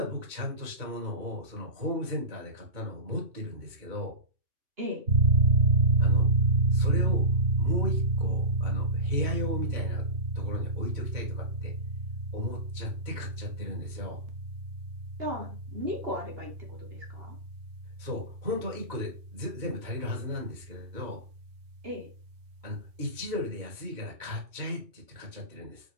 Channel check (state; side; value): late; left; 2.2 ms